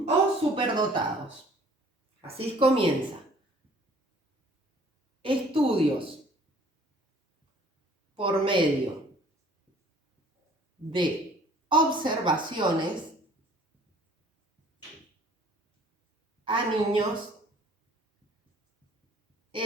superdotados. Así comienza. Estudios por medio de observaciones a niños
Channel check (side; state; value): both; normal; correlation 0.54